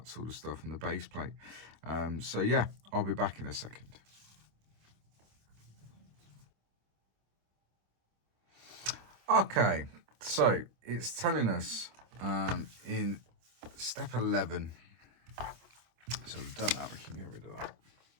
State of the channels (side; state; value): left; late; 26 ms